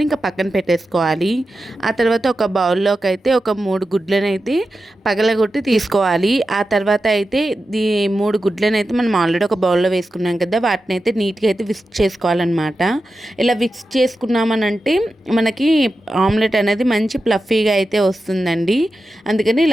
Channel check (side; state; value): both; normal; correlation 0.91